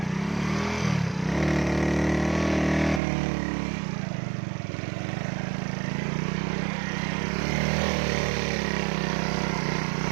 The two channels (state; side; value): drops out; left; at 3.0 s